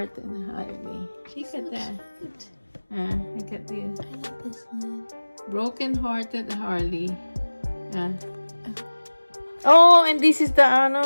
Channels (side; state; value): both; inverted; correlation -1.00